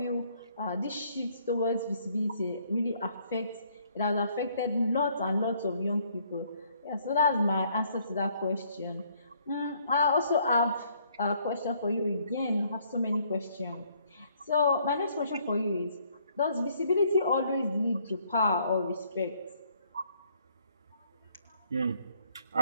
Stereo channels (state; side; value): inverted; both; correlation -0.66